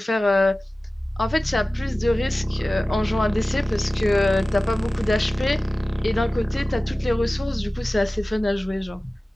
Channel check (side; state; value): both; normal; correlation 0.96